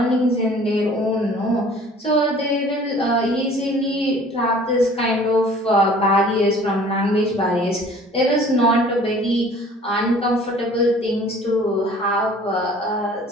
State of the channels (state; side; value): normal; both; correlation 0.50